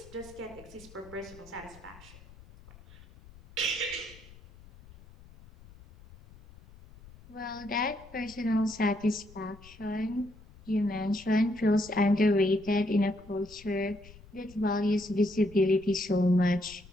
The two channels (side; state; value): left; noise; rumble, 22 dB below the sound